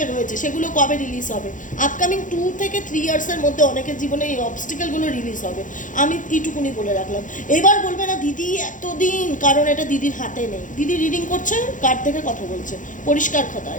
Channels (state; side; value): late; right; 0.37 ms